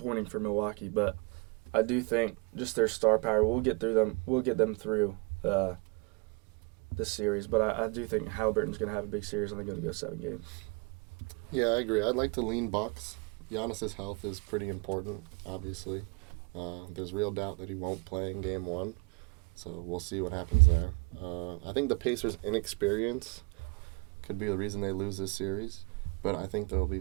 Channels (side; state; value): left; quieter; 30.8 dB